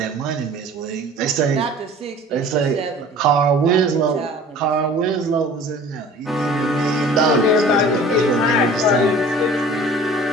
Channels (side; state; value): both; normal; correlation 0.46